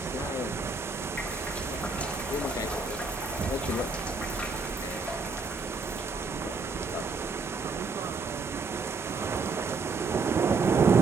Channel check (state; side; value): quieter; left; 4.1 dB